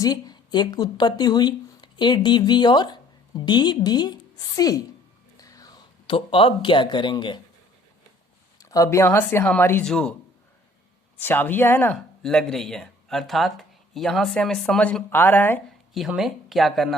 एक उत्पत्ति हुई ADB और DBC। तो अब क्या करेंगे, अब यहां से हमारी जो चाबियां है ना लग रही है, अर्थात यहां से हमें समझ आ रहा है कि हमें क्या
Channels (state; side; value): normal; both; correlation 0.56